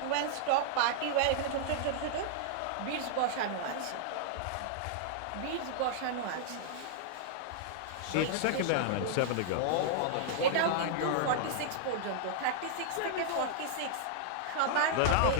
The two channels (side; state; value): both; different; correlation -0.01